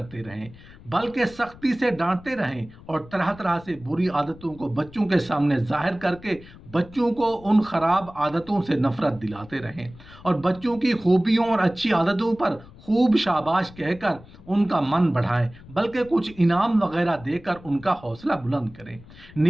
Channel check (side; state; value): left; noise; rumble, 20 dB below the sound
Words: रहें, बल्कि सख्ती से डांटते रहें और तरह तरह से बुरी आदतों को बच्चों के सामने जाहिर करके बच्चों को उन खराब आदतों से नफरत दिलाते रहें और बच्चों की खूबियों और अच्छी आदतों पर खूब शाबाश कहकर उनका मन बढ़ाएं, बल्कि कुछ इनाम वगैरह देकर उनका हौसला बुलंद करें।